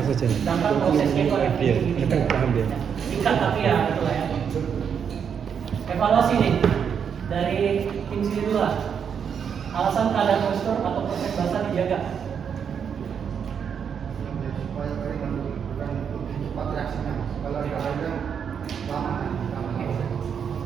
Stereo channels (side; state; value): left; quieter; 7.4 dB